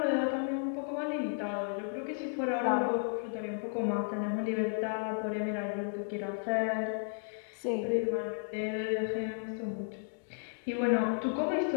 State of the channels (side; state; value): right; silent; digital silence